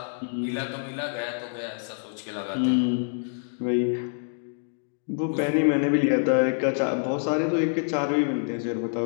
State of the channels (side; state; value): right; silent; digital silence